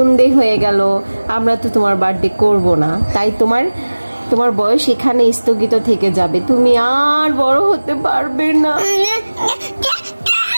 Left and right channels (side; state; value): both; inverted; correlation -1.00